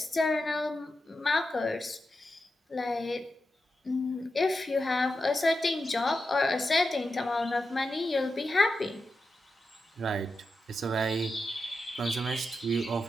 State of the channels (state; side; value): normal; both; correlation 0.89